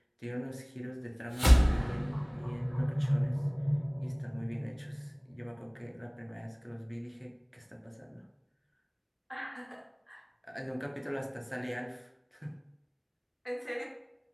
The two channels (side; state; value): both; identical; correlation 1.00